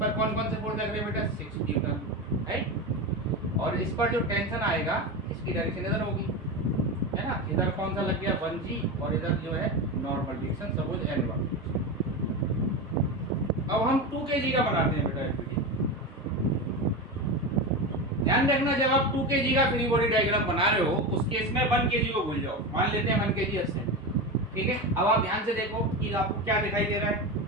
कौन कौन से फोर्स लग रहे हैं बेटा, 6 न्यूटन, राइट। और इस पर जो टेंशन आएगा इसकी डायरेक्शन इधर होगी, है ना। इधर कौन सा लग गया 1g, और इधर जो है नॉर्मल डायरेक्शन, सपोज n1। अब हम 2 kg का बनाते हैं बेटा एफबीडी। ध्यान रखना, जब आप 2 kg का फ्री बॉडी डायग्राम बना रहे हो उस केस में 1 kg को भूल जाओ। मान लेते हैं 1 kg अस्से, ठीक है। अब आप ध्यान से देखो कि आपको क्या दिखाई दे रहा है,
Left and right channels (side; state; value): both; normal; correlation 0.20